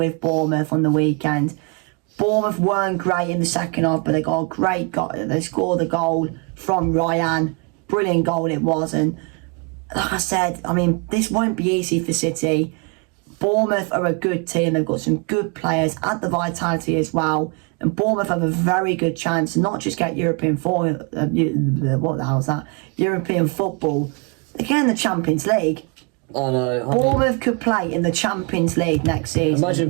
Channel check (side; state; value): left; quieter; 33.2 dB